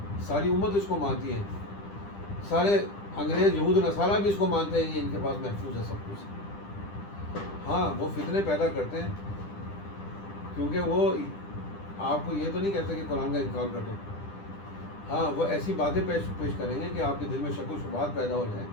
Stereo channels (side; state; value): right; late; 10 ms